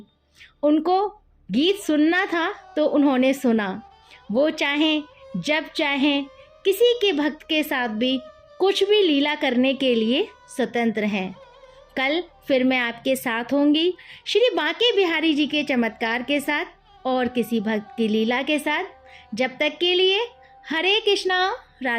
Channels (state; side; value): identical; both; correlation 1.00